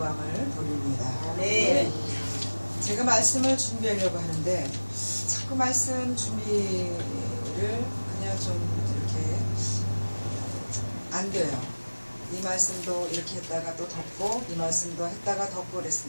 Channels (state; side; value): inverted; both; correlation -1.00